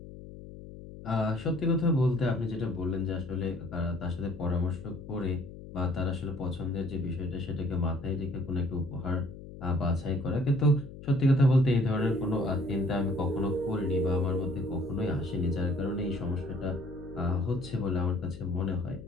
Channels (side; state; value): left; noise; hum, 14 dB below the sound